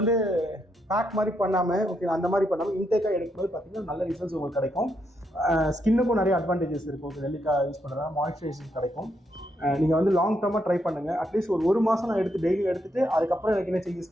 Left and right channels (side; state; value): both; normal; correlation 0.79